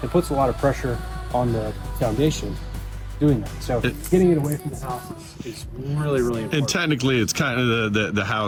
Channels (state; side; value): identical; both; correlation 1.00